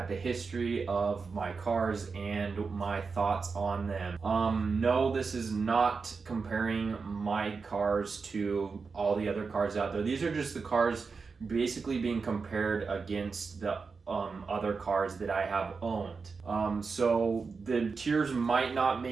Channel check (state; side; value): quieter; left; 4.9 dB